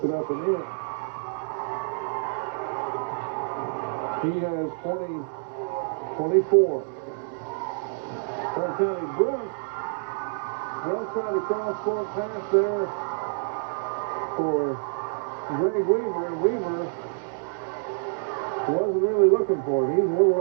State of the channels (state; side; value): silent; left; digital silence